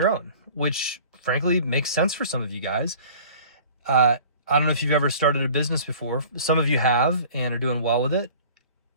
own, which frankly makes sense for some of you guys. I don't know if you've ever started a business before. Some of you have and are doing well with it.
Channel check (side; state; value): both; inverted; correlation -0.46